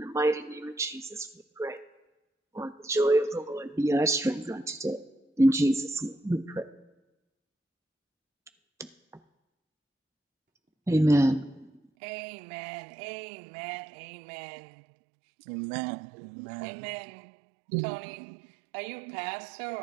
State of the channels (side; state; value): left; drops out; at 11.8 s